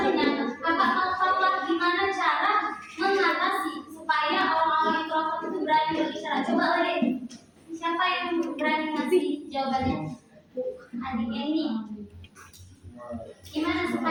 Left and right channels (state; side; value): identical; both; correlation 1.00